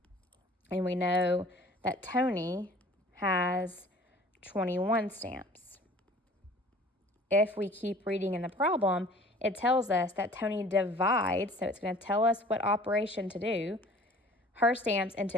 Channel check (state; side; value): normal; both; correlation 0.49